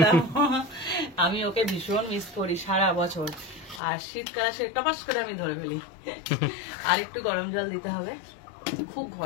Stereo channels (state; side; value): drops out; right; at 3.8 s